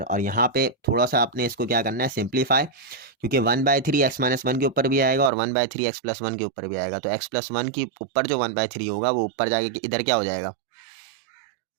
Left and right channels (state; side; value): drops out; left; at 5.3 s